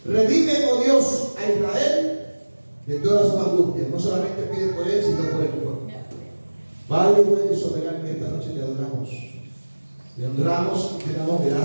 Redime, oh Dios, a Israel de todas sus angustias. No solamente pide por él, sino por el pueblo. Padre bueno y soberano, esta noche te adoramos. Te honramos y te damos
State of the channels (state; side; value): inverted; both; correlation -1.00